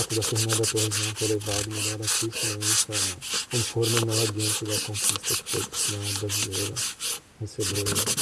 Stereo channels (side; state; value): both; identical; correlation 1.00